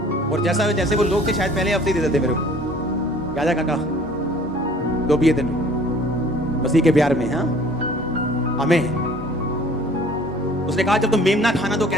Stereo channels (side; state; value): both; normal; correlation 0.52